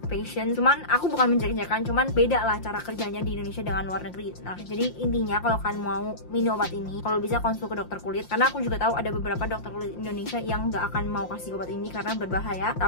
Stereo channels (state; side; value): late; right; 5.7 ms